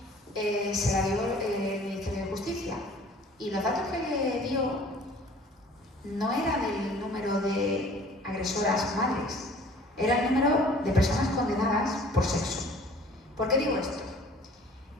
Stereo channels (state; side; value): normal; both; correlation 0.50